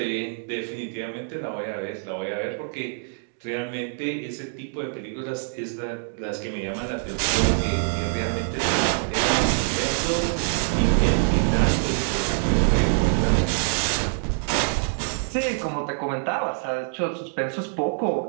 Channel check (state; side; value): silent; left; digital silence